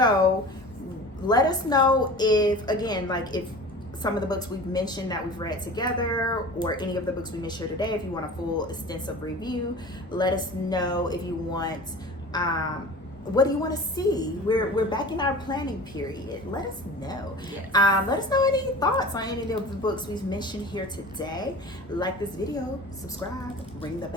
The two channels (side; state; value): both; normal; correlation 0.38